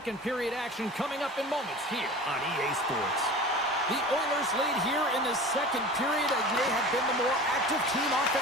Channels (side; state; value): both; normal; correlation 0.37